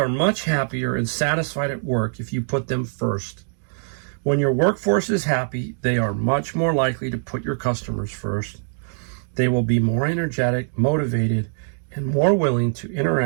much happier and satisfied at work if you put them first. When your workforce is happy, they are much more likely to put your customers first. They will be more energetic, motivated, and more willing to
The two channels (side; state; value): left; silent; digital silence